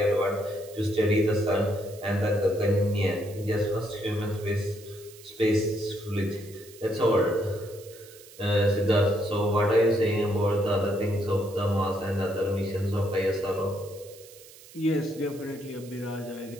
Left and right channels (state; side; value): noise; right; hiss, 21 dB below the sound